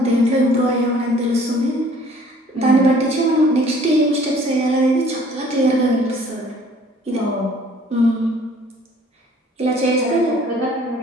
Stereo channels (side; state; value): both; normal; correlation 0.55